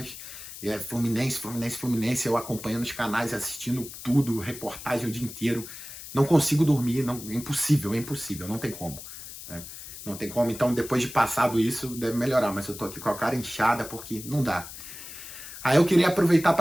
Fluminense, eu acompanhando os canais, assistindo tudo, reportagem o dia inteiro. Não consigo dormir, é impossível, não tem como, né? Não tem como, então depois de passado isso, deve melhorar, mas eu tô aqui com a cara inchada porque não dá. Aí eu queria aproveitar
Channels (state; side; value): noise; left; hiss, 12 dB below the sound